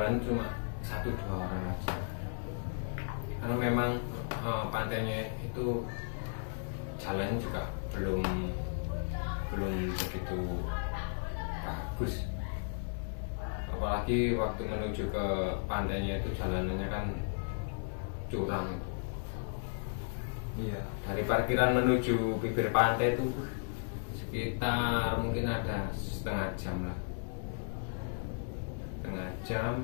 cuma 1-2 orang aja karena memang pantainya itu jalan juga belum begitu bagus, apalagi waktu menuju ke pantainya itu jalanannya kan curam. Iya. Dari parkiran menuju bibir pantai itu sekitar mungkin ada setengah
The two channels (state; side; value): silent; right; digital silence